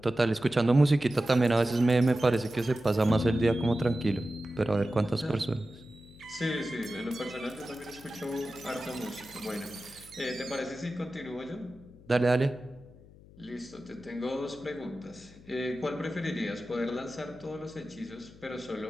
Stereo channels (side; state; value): left; noise; hum, 22 dB below the sound